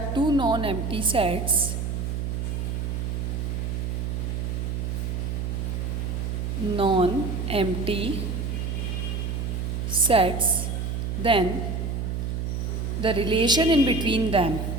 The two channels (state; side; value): noise; right; hum, 2 dB below the sound